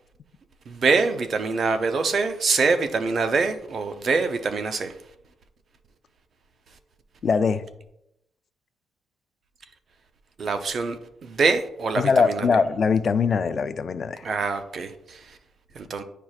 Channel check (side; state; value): both; normal; correlation 0.80